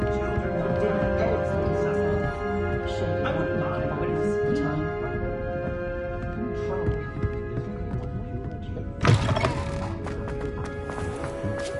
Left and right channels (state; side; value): identical; both; correlation 1.00